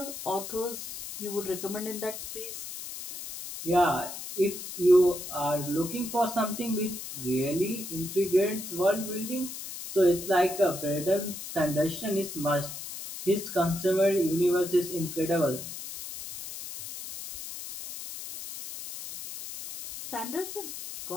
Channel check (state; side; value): noise; left; hiss, 9 dB below the sound